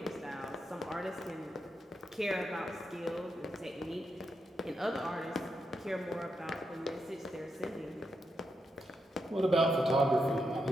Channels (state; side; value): normal; both; correlation 0.84